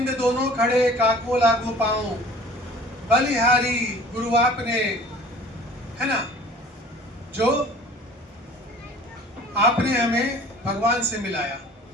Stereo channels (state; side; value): normal; both; correlation 0.47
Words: दोनों खड़े, काको लागू पाऊं, बलिहारी गुरु आपने, है ना? जो आपने हमें भगवान से मिलाया।